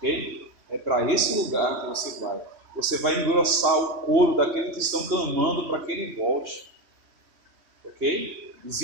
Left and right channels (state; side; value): late; left; 3.1 ms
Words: É para esse lugar que você vai. Você vai engrossar o coro daqueles que estão clamando para que ele volte, ok?